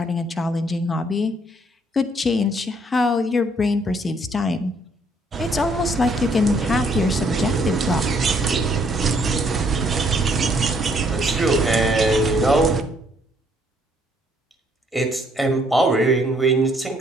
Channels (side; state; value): both; normal; correlation 0.66